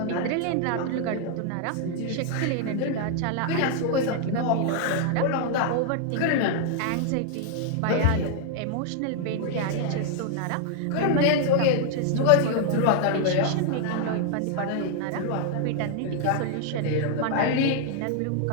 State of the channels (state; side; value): different; both; correlation 0.00